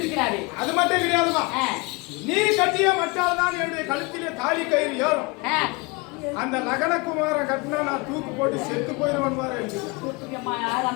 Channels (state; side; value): quieter; right; 26.7 dB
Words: அது மட்டும் கிடையாதுமா, நீ கட்டிய மட்டால் தான் என்னுடைய கழுத்திலே தாலி கயிறு ஏறும். அந்த லக்னகுமாரன் கட்டினா நான் தூக்கு போட்டு செத்து போயிடுவேன் பாரு.